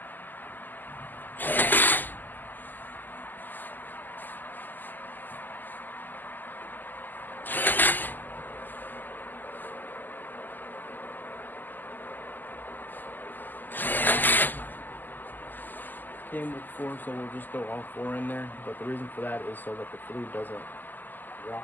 Came with 4, so we'll just throw all 4 in there. But the reason for that is so that the fluid doesn't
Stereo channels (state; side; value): late; right; 0.087 ms